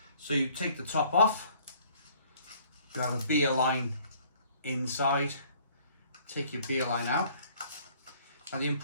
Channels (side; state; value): both; inverted; correlation -0.58